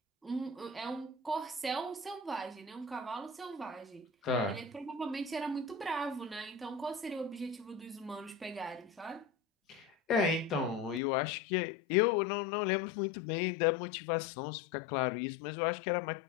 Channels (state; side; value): drops out; right; at 11.0 s